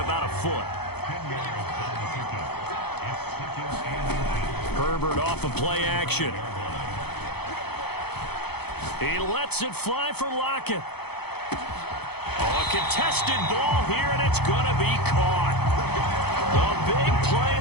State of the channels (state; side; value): late; right; 0.97 ms